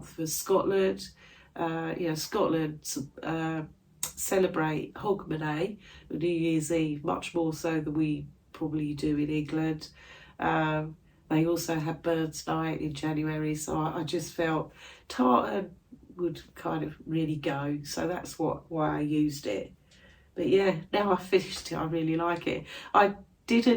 for Scotland. You know, Scotland celebrate Hogmanay, New Year's Eve, much more so than we probably do in England. They also have Birds Night in January, so I just felt tartan would kind of really go. So that's why I used it. But yeah, now I've finished it, I really like it. I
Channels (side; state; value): both; identical; correlation 1.00